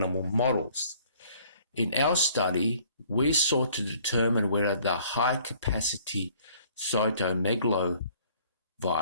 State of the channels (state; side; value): inverted; both; correlation -0.57